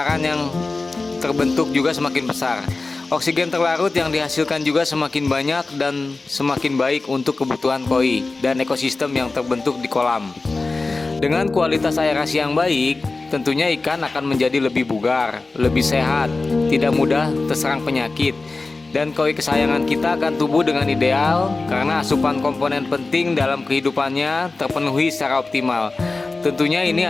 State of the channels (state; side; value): quieter; right; 3.6 dB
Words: yang terbentuk juga semakin besar. Oksigen terlarut yang dihasilkan juga semakin banyak dan semakin baik untuk kebutuhan koi dan ekosistem yang terbentuk di kolam. Dengan kualitas aerasi yang baik, tentunya ikan akan menjadi lebih bugar, lebih sehat, tidak mudah terserang penyakit, dan koi kesayangan kita akan tumbuh dengan ideal karena asupan komponen penting dalam kehidupannya terpenuhi secara optimal. Tentunya ini